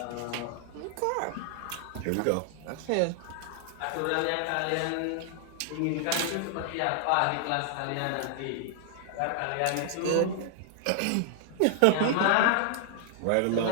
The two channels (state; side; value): different; both; correlation 0.00